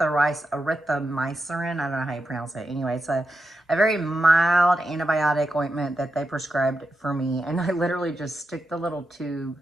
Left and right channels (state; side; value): normal; both; correlation 0.87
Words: I don't know how you pronounce it. Anyway, it's a very mild antibiotic ointment that they prescribed for me. And I literally just stick the little tube